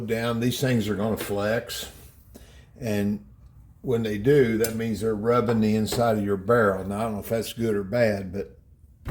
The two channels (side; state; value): both; identical; correlation 1.00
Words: down, these things are going to flex. And when they do, that means they're rubbing the inside of your barrel. Now, I don't know if that's good or bad, but